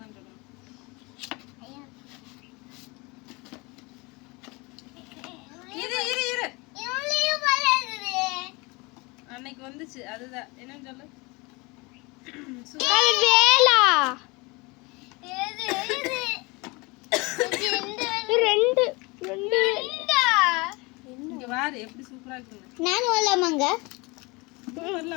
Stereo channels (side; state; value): right; quieter; 26.1 dB